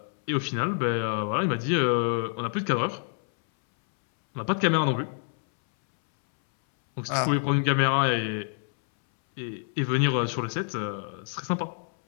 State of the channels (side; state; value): right; silent; 60 dB below the other